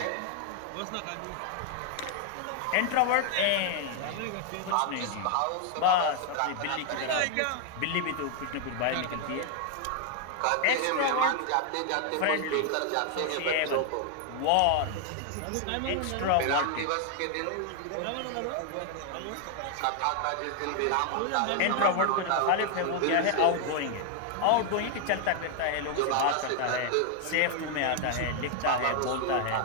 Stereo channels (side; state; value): both; different; correlation 0.00